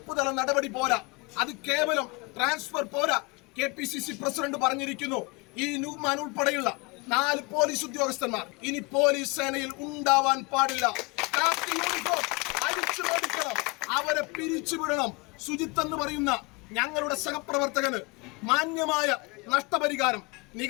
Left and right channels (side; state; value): right; quieter; 27.7 dB